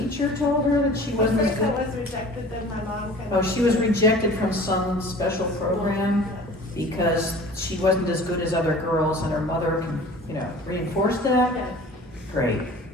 told her that she wasn't as First good. I was rejected, then my mom kind Oh, of. she was rejected from some special program because she wasn't as good as other girls, and her mother, reinforced that? Yeah. Great.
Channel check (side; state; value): both; normal; correlation 0.44